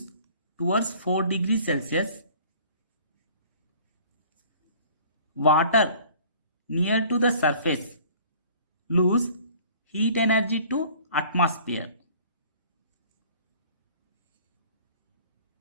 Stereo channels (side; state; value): both; inverted; correlation -0.51